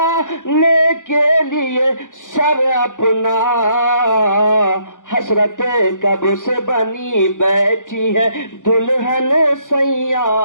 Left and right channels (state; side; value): late; right; 0.87 ms